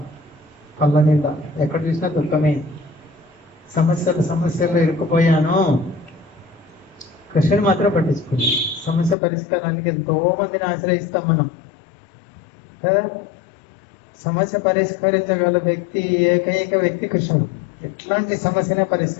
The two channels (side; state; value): right; drops out; at 9.2 s